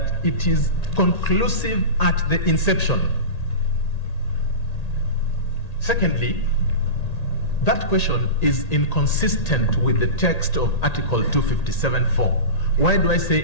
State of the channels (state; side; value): late; right; 1.8 ms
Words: it is conclusive at the inception. Secondly, that question is inconsistent with the text of Article 257(4). Why do I say